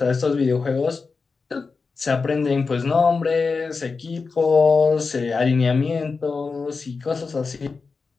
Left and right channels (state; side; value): quieter; right; 4.6 dB